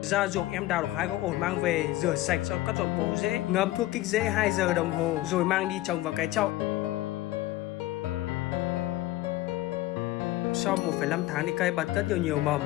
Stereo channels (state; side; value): quieter; right; 16.9 dB